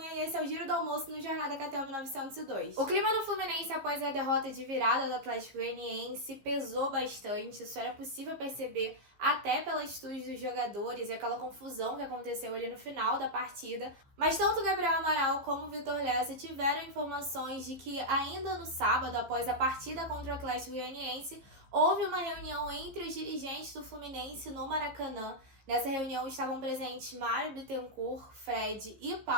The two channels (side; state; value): left; late; 15 ms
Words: e esse é o Giro do Almoço no Jornada KTO 1902. O clima no Fluminense após a derrota de virada do Atlético Goianiense pesou bastante, isso era possível perceber até pelas atitudes dos jogadores e aquela confusão que aconteceu ali no final da partida. Mas tanto Gabriel Amaral como o Vitor Lessa tiveram informações de que ainda no sábado, após a partida contra o Atlético Goianiense, houve uma reunião entre os dirigentes do Fluminense no Maracanã. Nessa reunião estavam presentes Mário Bittencourt, Fred e